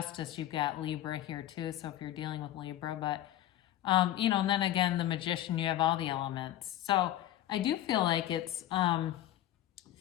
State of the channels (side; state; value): right; quieter; 13.0 dB